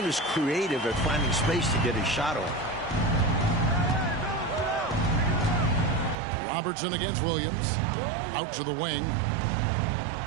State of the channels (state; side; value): drops out; left; at 6.2 s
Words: is creative at finding space to get his shot off. Robertson against Williams. Out to the wing.